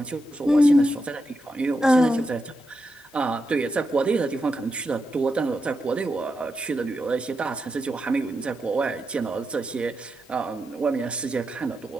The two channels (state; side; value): normal; both; correlation 0.86